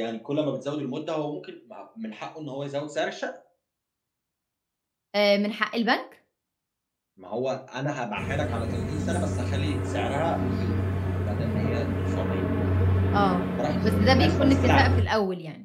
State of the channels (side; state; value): both; identical; correlation 1.00